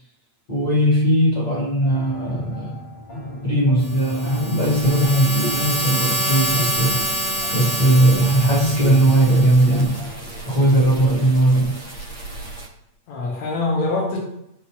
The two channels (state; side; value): late; right; 8.6 ms